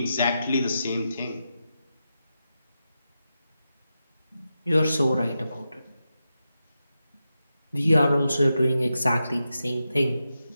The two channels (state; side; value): inverted; both; correlation -0.88